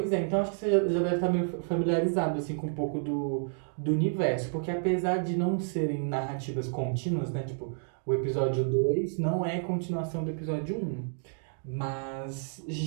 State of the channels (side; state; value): left; silent; digital silence